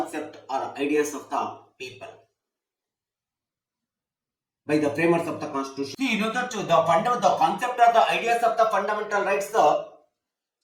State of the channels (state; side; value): identical; both; correlation 1.00